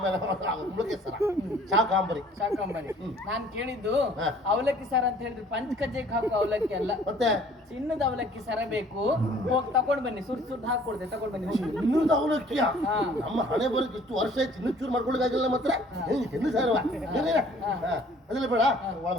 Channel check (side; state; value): both; normal; correlation 0.55